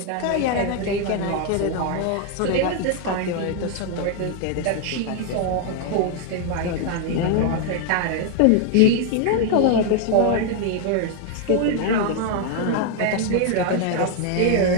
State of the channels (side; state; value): both; different; correlation 0.00